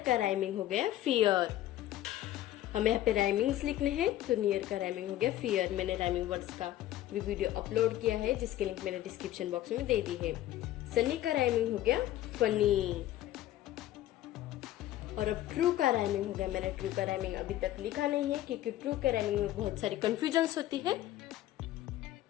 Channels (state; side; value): quieter; right; 13.9 dB